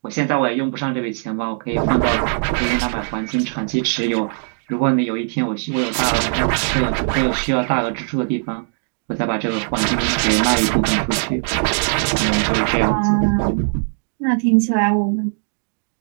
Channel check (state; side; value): silent; left; 65 dB below the other